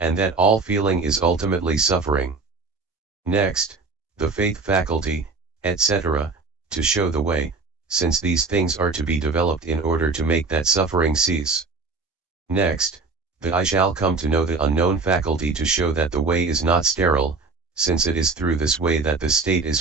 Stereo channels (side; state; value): left; quieter; 4.1 dB